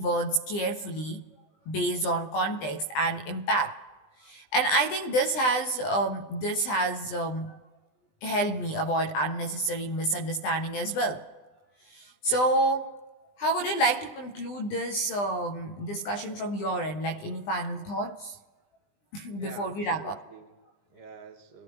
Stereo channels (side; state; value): right; late; 20 ms